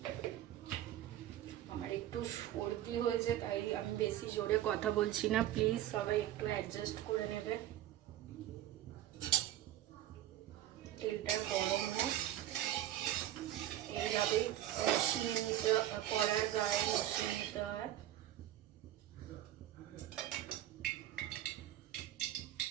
আমার একটু সর্দি হয়েছে, তাই আমি বেশি জোরে কথা বলছি না, প্লিজ সবাই একটু অ্যাডজাস্ট করে নেবে। তেলটা গরম হোক, এইভাবেই মিশিয়ে নিতে, কড়ার গায়ে মিশিয়ে নিতে হয়।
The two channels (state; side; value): quieter; left; 12.9 dB